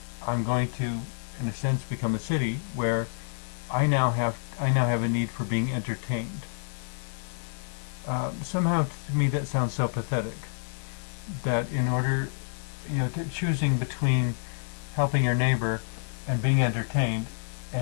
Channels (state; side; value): silent; right; 59 dB below the other